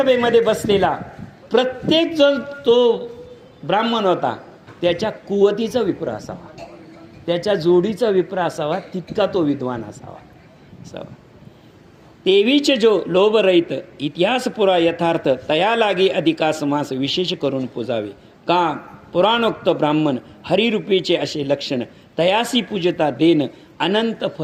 बसलेला प्रत्येक जण तो ब्राह्मण होता, त्याच्या कुवतीचा विप्र असावा, त्याच्या जोडीचा विप्र असावा, तितका तो विद्वान असावा. तेवीचे जो लोभ रहित इतिहास पुरा यथार्थ तया लागी अधिकास मास विशेष करून पूजावे. का पुराणोक्त ब्राह्मण हरिरूपीचे असे लक्षण तयासी पूजता देन अनंत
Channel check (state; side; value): identical; both; correlation 1.00